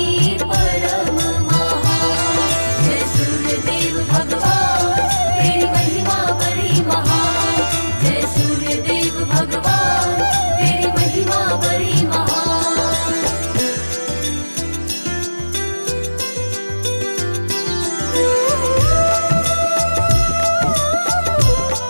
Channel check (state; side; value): inverted; both; correlation -1.00